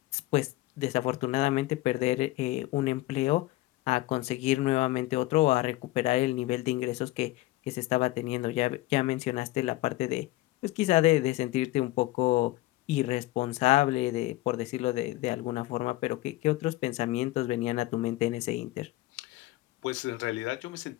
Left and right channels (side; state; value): right; quieter; 18.3 dB